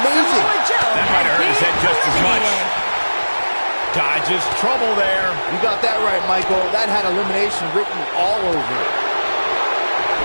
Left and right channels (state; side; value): inverted; both; correlation -1.00